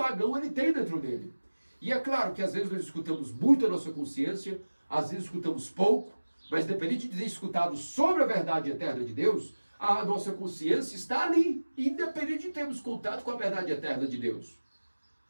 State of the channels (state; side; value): inverted; both; correlation -1.00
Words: ele tem dentro dele. E é claro que às vezes nós escutamos muito a nossa consciência, às vezes escutamos pouco, mas independente de ter escutado sobre a verdade eterna de Deus, a nossa consciência está ali, independente de termos contato com a verdade eterna de Deus.